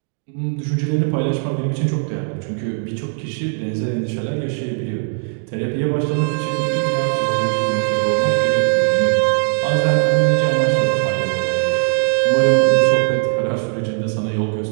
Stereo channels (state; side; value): silent; left; 67 dB below the other